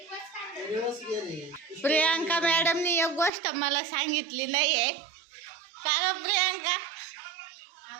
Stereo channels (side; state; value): left; drops out; at 3.3 s